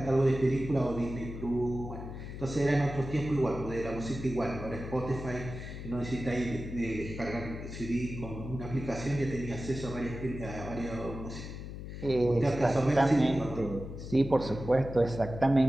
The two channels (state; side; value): noise; left; hum, 9 dB below the sound